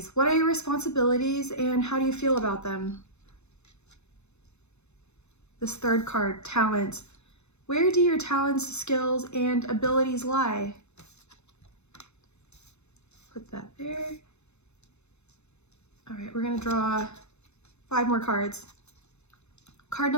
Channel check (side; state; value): right; late; 0.81 ms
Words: What are your responsibilities and how do you feel about them? This 3rd card, talent. Where do your talents, skills, and abilities lie? Put that there. All right, we're gonna draw 5 more cards. Card